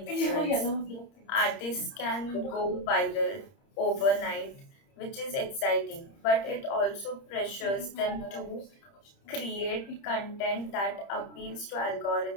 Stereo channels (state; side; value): late; right; 30 ms